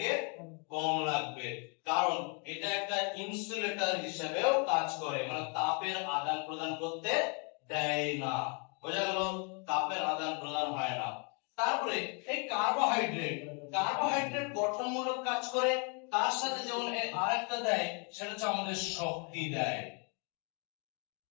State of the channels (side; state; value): right; quieter; 36.2 dB